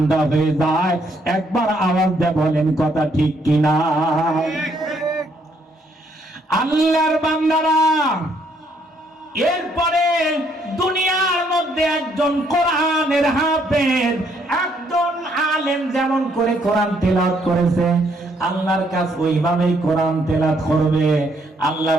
হয়ে যায়। একবার আওয়াজ দিয়ে বলেন কথা ঠিক কিনা? আল্লাহর বান্দারা, এরপরে দুনিয়ার মধ্যে একজন কোরআনের হাফেজ, একজন আলেম যেমন করে কোরআন তেলাওয়াত করেছে, আল্লাহর কাছে ওইভাবেই কোরআন তেলাওয়াত করবে। আল্লাহ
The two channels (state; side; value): normal; both; correlation 0.70